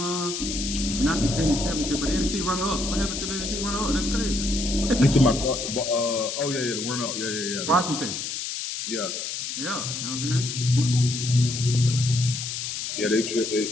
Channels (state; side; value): noise; left; hiss, 4 dB below the sound